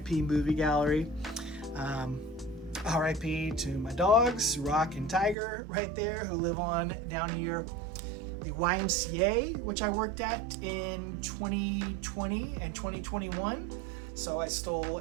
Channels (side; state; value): left; drops out; at 5.4 s